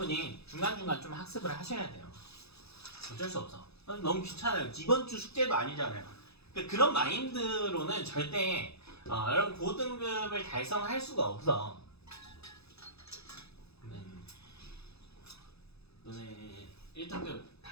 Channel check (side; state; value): right; late; 0.79 ms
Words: 중간중간 좀 학습을 하셔야 돼요. 어쩔 수 없어. 너무 귀찮아요. 이번 주 숙제도 아니잖아요. 그러니까 그런 마인드로는 절대 여러분 고등급을 달성할 수가 없어. 너네 1등급